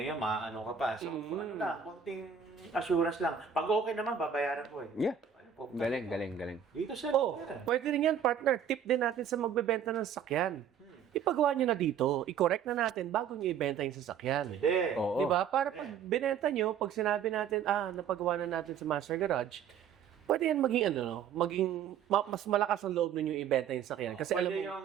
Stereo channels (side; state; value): left; quieter; 7.9 dB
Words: maano ka pa. So, konting assurance lang. Pag okay naman, babayaran ko eh. Yeah. Galing. Dito sa Pwede rin yan, partner. Tip din natin sa magbebenta ng sasakyan. Ipagawa nyo na dito, i-correct na natin bago nyo ibenta yung sasakyan. Pwede. Oo. Diba? Para pag binenta nyo, pag sinabi natin, napagawa na natin sa Master Garage, pwede yan maging mas malakas ang loob ninyo ibenta yung sasakyan. Kasi alam